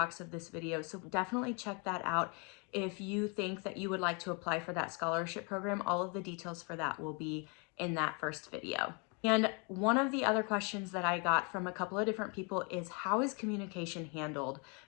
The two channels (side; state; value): right; quieter; 33.9 dB